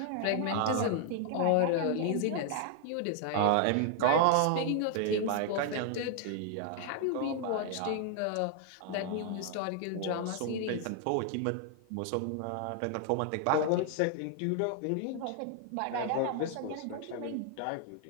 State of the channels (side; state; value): both; different; correlation 0.00